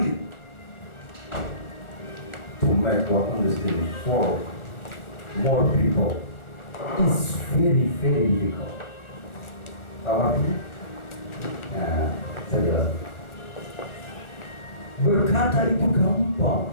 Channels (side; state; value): right; late; 1.4 ms